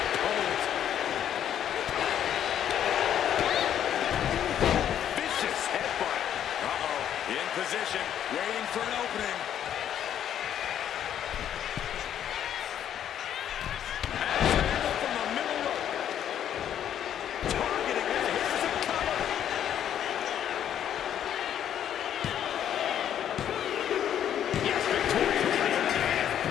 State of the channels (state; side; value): quieter; right; 10.0 dB